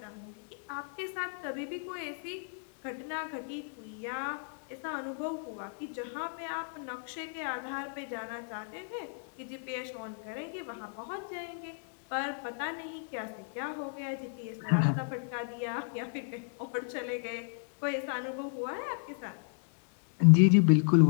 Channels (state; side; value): silent; right; digital silence